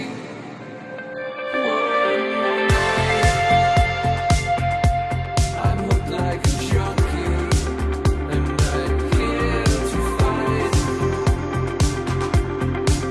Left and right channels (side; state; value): both; identical; correlation 1.00